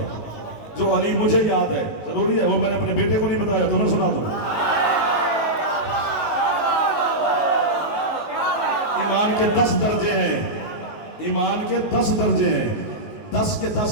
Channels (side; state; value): right; late; 19 ms